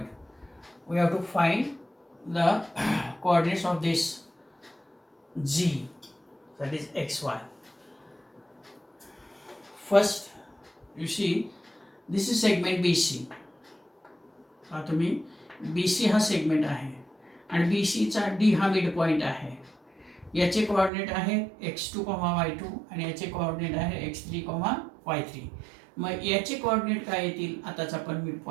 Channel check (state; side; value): drops out; left; at 20.9 s